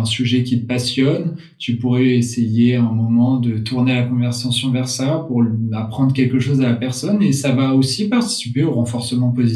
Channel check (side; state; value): both; identical; correlation 1.00